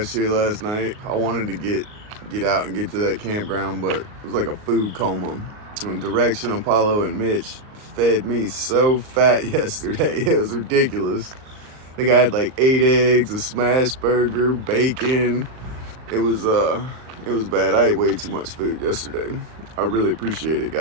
here last night. I wanted to get out and get to that campground, but it was like a food coma. And Direction, Apollo, and Mitch fed me so fat yesterday. It was ridiculous. I think I had like 8 eggs, a smash burger, bacon. It was bad. I ate way too much food yesterday. I really appreciate it,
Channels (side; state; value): left; late; 38 ms